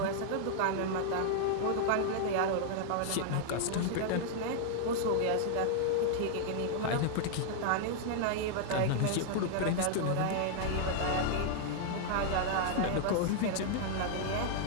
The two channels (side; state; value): both; different; correlation -0.01